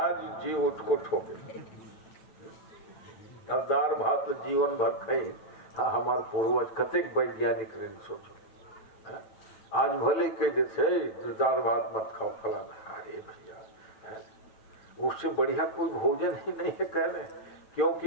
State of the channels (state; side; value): late; right; 9.1 ms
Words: जी उसको ठोके। अब दाल भात तो जीवन भर खाई। हाँ हमारे पूर्वज कतेक वैज्ञानिक ने सोचो, आज भले कह देते दाल भात मत खाओ फलाना, अरे भैया उससे बढ़िया कोई भोजन ही नहीं है कह रहे,